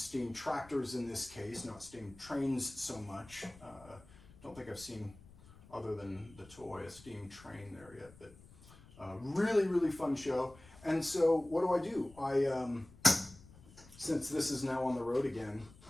tractors in this case, not steam trains so much. Don't think I've seen, other than the toy, a steam train there yet, but really, really fun show. And so what do? Since this is now on the road again,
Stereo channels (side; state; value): left; noise; rumble, 22 dB below the sound